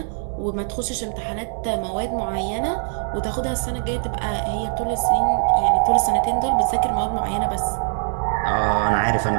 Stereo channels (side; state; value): left; silent; digital silence